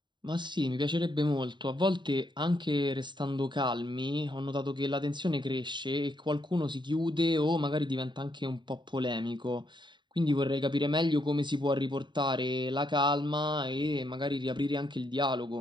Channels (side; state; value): left; late; 0.22 ms